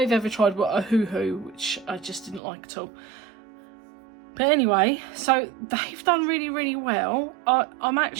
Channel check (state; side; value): drops out; left; at 2.4 s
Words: ever tried were a Hoo Hoo, which I just didn't like at all. But anyway, so they've done really, really well. I'm